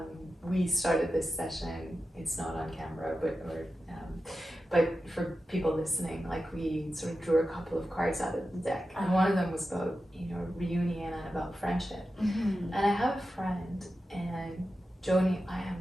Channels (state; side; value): normal; both; correlation 0.91